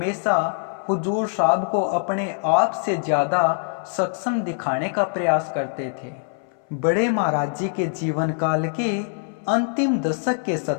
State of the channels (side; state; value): right; silent; 63 dB below the other